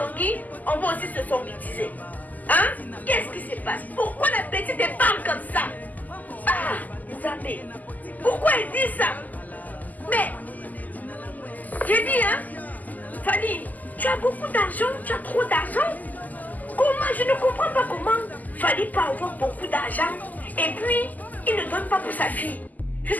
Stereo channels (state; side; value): late; right; 0.081 ms